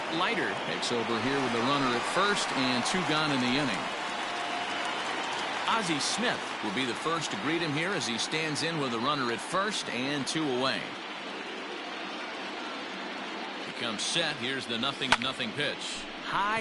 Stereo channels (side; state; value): both; identical; correlation 1.00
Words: Leiter takes over here with the runner at first and 2 gone in the inning. Ozzie Smith will be the first to greet him here as he stands in with a runner at first and 2 away. He comes set. Here's the 0-0 pitch. High